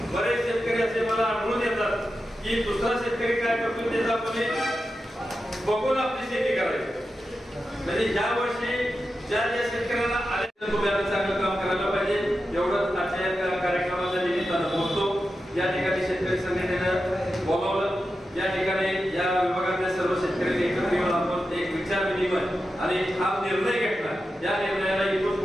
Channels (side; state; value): both; normal; correlation 0.90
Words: बरेच शेतकरी असे मला आढळून येतात की दुसरा शेतकरी काय करतो त्याचा आपण बघून आपली शेती करायची. म्हणजे या वर्षी ज्या शेतकऱ्यांना आले तुम्ही चांगलं काम करायला पाहिजे एवढंच आजच्या कार्यक्रमाच्या निमित्तानं बोलतो. या ठिकाणी शेतकरी संघटनेनं बोलावलं. या ठिकाणी या विभागातल्या सर्व शेतकऱ्यांनी एकत्र येऊन आपण एक विचार विनिमय आणि हा निर्णय घेतला. या निर्णयाला इथून